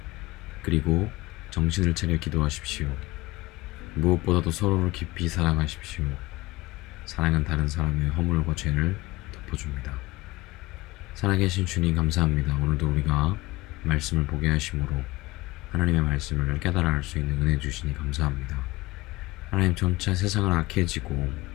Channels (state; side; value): quieter; right; 20.1 dB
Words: 그리고 정신을 차려 기도하십시오. 무엇보다도 서로를 깊이 사랑하십시오. 사랑은 다른 사람의 허물과 죄를 덮어줍니다. 살아계신 주님 감사합니다. 오늘도 우리가 말씀을 보게 하심으로 하나님의 말씀을 깨달아 알 수 있는 은혜 주시니 감사합니다. 하나님, 점차 세상은 악해지고